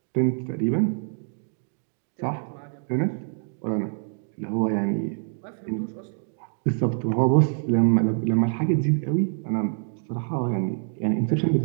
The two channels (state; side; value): silent; left; 60 dB below the other